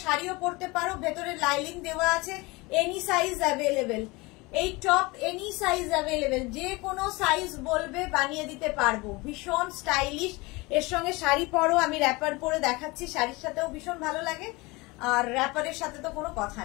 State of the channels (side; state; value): right; quieter; 24.0 dB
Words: শাড়িও পরতে পারো, ভেতরে লাইলিং দেওয়া আছে, এনি সাইজ অ্যাভেলেবেল। এই টপ এনি সাইজ অ্যাভেলেবেল, যে কোনো সাইজ বলবে বানিয়ে দিতে পারবো। ভীষণ স্টাইলিশ, এর সঙ্গে শাড়ি পরো, আমি র্যাপার পরে দেখাচ্ছি, শাড়ির সাথেও ভীষণ ভালো লাগে। আর র্যাপারের সাথে তো কোনো কথা